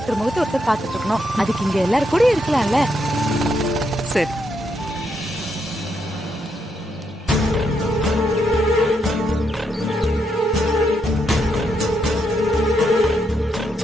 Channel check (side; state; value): both; normal; correlation 0.79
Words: முகத்தை ஒருத்தர் பாத்துட்டு இருக்கணும். அதுக்கு இங்க எல்லாரும் கூட இருக்கலாம்ல. சரி.